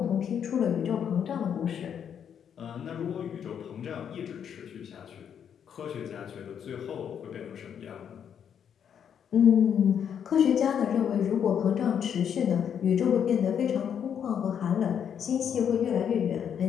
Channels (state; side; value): quieter; right; 8.3 dB